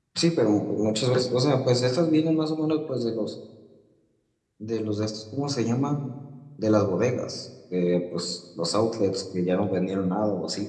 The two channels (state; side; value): identical; both; correlation 1.00